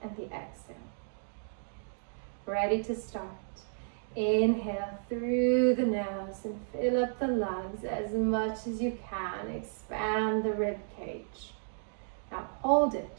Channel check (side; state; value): left; silent; digital silence